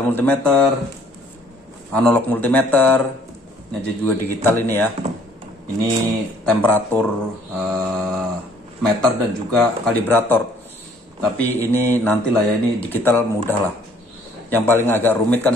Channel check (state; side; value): normal; both; correlation 0.60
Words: multimeter, analog multimeter. Ini juga digital ini ya. Ini temperatur meter dan juga kalibrator. Tapi ini nantilah ya, ini digital mudah lah. Yang paling agak rumit kan